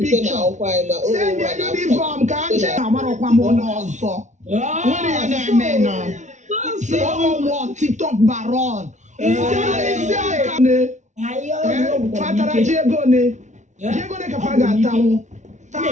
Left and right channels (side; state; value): left; late; 0.35 ms